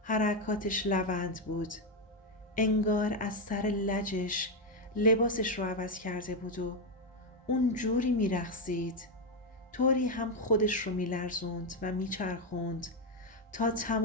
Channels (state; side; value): normal; both; correlation 0.05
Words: حرکاتش لوند بود. انگار از سر لجش لباسش رو عوض کرده بود و اون جوری میرقصید، طوری هم خودش رو میلرزوند و میچرخوند تا